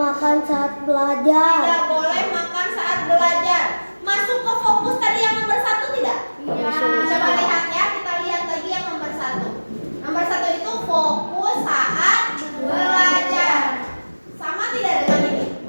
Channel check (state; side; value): inverted; both; correlation -1.00